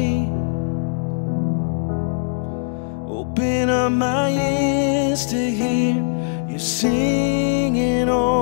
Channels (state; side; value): silent; right; digital silence